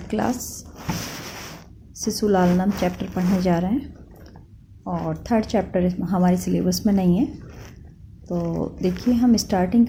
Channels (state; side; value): identical; both; correlation 1.00